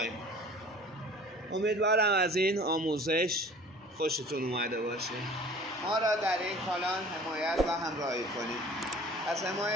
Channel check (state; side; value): normal; both; correlation 0.46